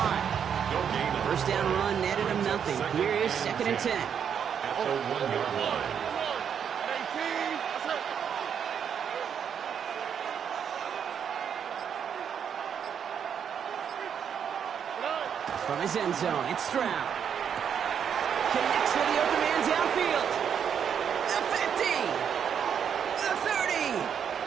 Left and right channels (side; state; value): left; quieter; 7.9 dB